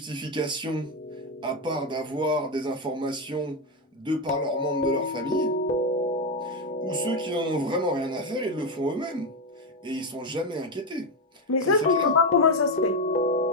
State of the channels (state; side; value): normal; both; correlation 0.09